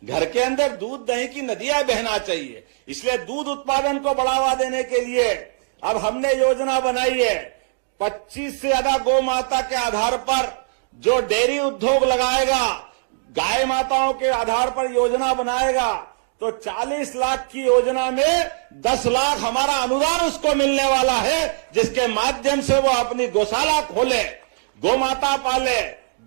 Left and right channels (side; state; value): left; silent; digital silence